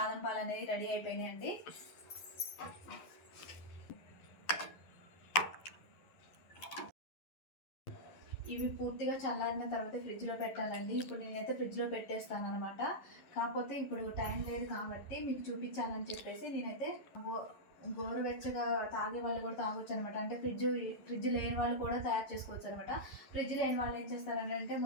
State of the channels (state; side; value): late; right; 11 ms